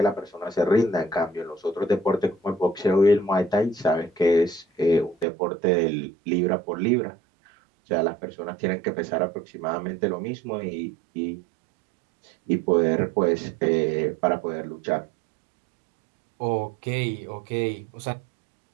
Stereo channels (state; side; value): drops out; left; at 5.2 s